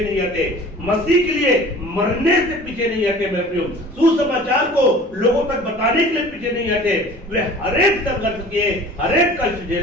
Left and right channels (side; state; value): both; normal; correlation 0.44